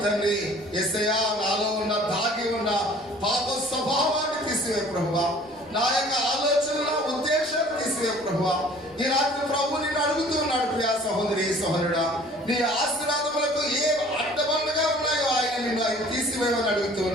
తండ్రి, యేసయ్యా నాలో ఉన్న దాగి ఉన్న పాప స్వభావాన్ని తీసివే ప్రభువా. నా యొక్క ఆలోచనల ఉద్దేశాన్ని తీసివే ప్రభువా. ఈ రాత్రి ప్రభు నిన్ను అడుగుతూ ఉన్నాడు. ప్రియ సహోదరి సహోదరుడా, నీ ఆశీర్వాదములకు ఏ అడ్డబండగా ఉన్నాయో ఆయన నిన్ను ఆయన తీసివేయమని అడుగుతూ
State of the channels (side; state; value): left; noise; rumble, 28 dB below the sound